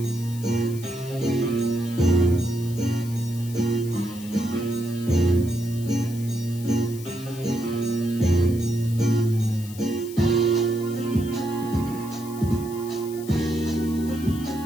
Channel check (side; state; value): left; noise; hiss, 17 dB below the sound